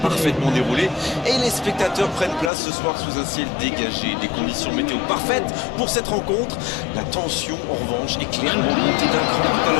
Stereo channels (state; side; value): drops out; right; at 2.5 s